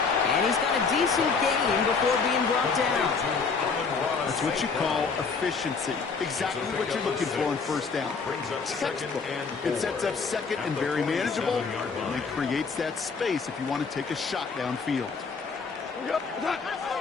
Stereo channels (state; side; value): quieter; right; 5.0 dB